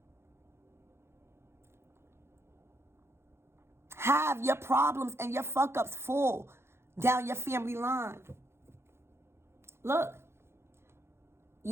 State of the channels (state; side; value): late; left; 0.12 ms